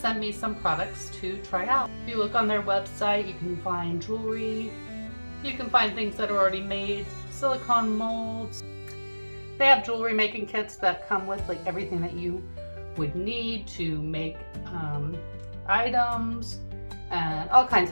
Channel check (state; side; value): inverted; both; correlation -1.00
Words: me some products to try out. If you look on their website, you can find jewelry, you can find things that are already made, silicone molds. They have jewelry making kits that come with like everything that you would need to make items and all kinds